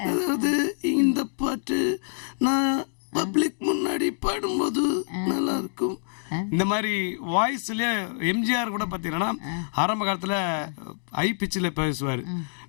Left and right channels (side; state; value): right; silent; digital silence